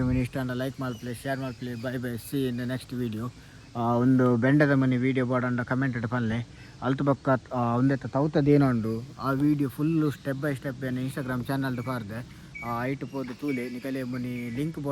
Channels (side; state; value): both; identical; correlation 1.00